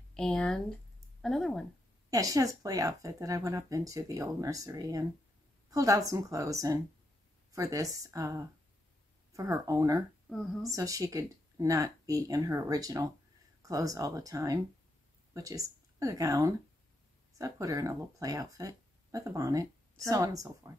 and another one. Yeah, she has a play outfit that I went up into the old nursery and pulled out some clothes and for this, for her owner, so she could not be in her original clothes all the time, which is a gown. So I put her in a little play outfit with a bonnet, so on and so forth.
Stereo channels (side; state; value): both; normal; correlation 0.82